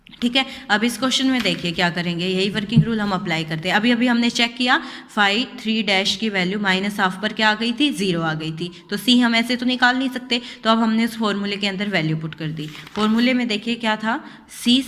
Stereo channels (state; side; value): identical; both; correlation 1.00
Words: ठीक है। अब इस क्वेश्चन में देखिए क्या करेंगे, यही वर्किंग रूल हम अप्लाई करते हैं। अभी हमने चेक किया, φ3' की वैल्यू -½ पर क्या आ गई थी, 0 आ गई थी। तो c हम ऐसे तो निकाल नहीं सकते, तो अब हमने उस फॉर्मूले के अंदर वैल्यू पुट कर दी। फॉर्मूले में देखिए क्या था,